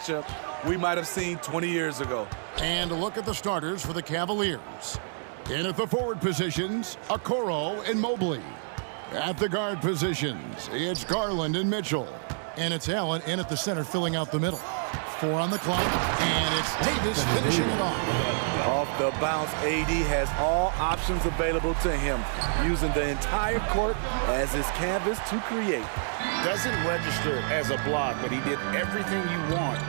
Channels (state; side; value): silent; left; digital silence